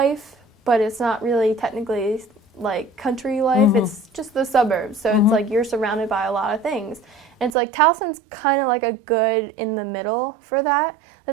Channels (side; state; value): left; drops out; at 7.5 s